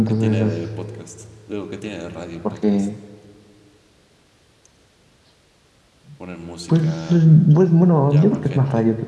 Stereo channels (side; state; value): both; identical; correlation 1.00